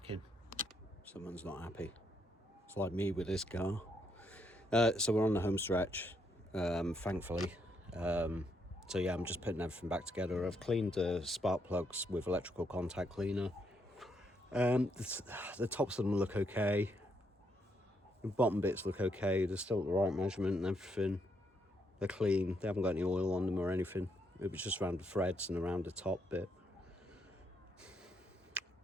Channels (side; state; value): both; normal; correlation 0.75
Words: in. Someone's not happy. It's like me with this car. So we're on the home stretch, thankfully. So yeah, I'm just putting everything back together. I've cleaned the spark plugs with electrical contact cleaner. The tops of them look okay. The bottom bits look okay. They're still at the right measurement and everything. They're clean. They haven't got any oil on them or anything. It was just around the threads and around the top bit.